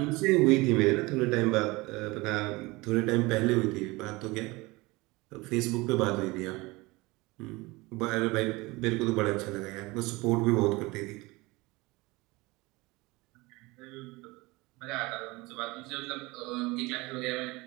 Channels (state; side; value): quieter; left; 22.9 dB